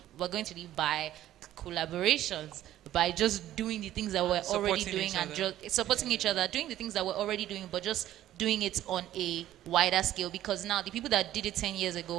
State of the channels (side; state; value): left; quieter; 13.2 dB